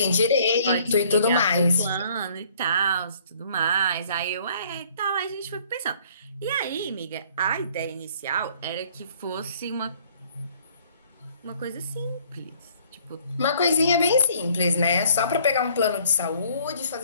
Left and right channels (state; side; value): inverted; both; correlation -0.59